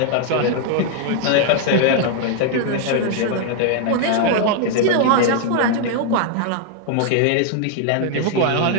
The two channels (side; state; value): both; different; correlation 0.00